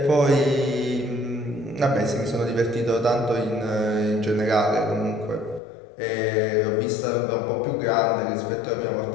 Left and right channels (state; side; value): drops out; right; at 5.6 s